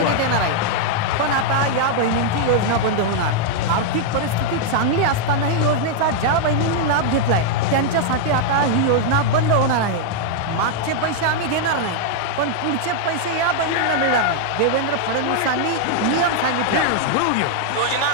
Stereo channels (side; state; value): both; different; correlation -0.01